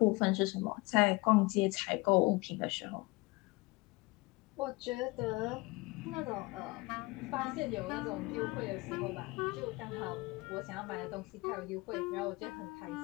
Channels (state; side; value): quieter; right; 24.1 dB